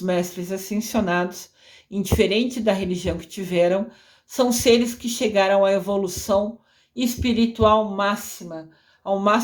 mestres ascensionados, indiferente da religião que tiveram, são seres que chegaram à evolução espiritual máxima, ao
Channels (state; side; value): identical; both; correlation 1.00